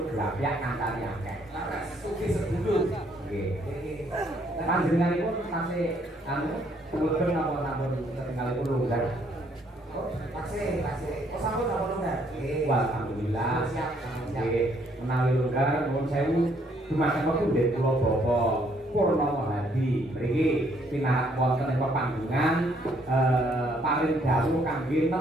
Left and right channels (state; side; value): normal; both; correlation 0.68